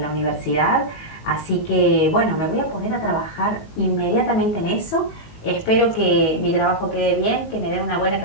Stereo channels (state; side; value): late; right; 19 ms